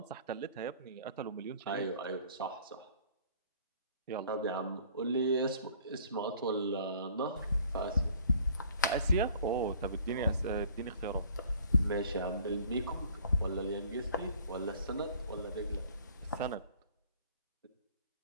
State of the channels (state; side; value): inverted; both; correlation -0.53